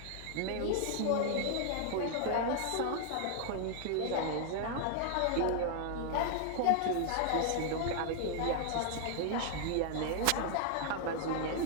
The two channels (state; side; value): different; both; correlation 0.00